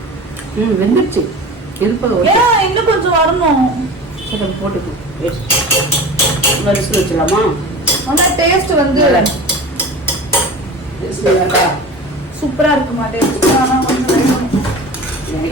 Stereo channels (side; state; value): both; normal; correlation 0.35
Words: வெந்துருச்சு. இன்னும் கொஞ்சம் வரணும். சரி, போட்டுக்கோ. விசில் வச்சிடலாமா? ஆனா டேஸ்ட் வந்து சூப்பரா இருக்குமா டேஸ்ட்? ஆனா